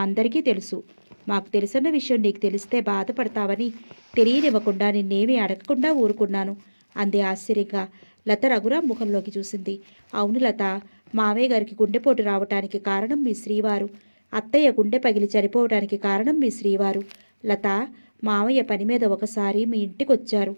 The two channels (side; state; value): both; inverted; correlation -1.00